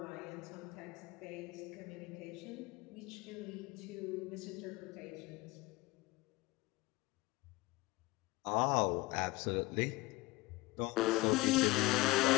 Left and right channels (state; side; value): quieter; right; 20.8 dB